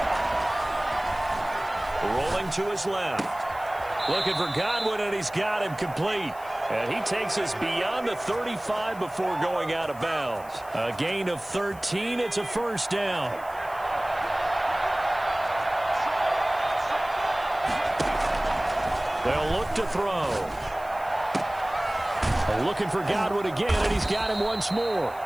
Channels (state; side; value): noise; left; hiss, 22 dB below the sound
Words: Rolling to his left. Looking for Godwin, and he's got him complete. And he takes us beyond the 35 before going out of bounds. A gain of 13. It's a first down. They'll look to throw. Looking for Godwin again, and he's got him once more.